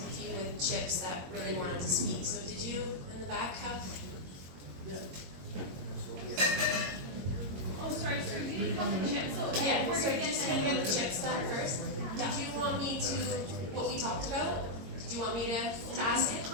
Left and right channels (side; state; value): left; late; 22 ms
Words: with chips that really wanted to speak. So did you in the back have? Oh, sorry, you didn't have the chips, so Yeah, we're gonna just get gonna get the chips done first. Did you want me to, what we talked about? Did you want me to ask it?